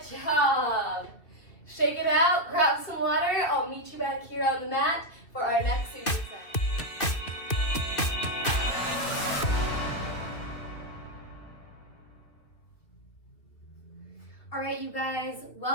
job. Shake it out. Grab some water. I'll meet you back here on the mat for our next superset. All right, you guys,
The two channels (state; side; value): late; right; 2.6 ms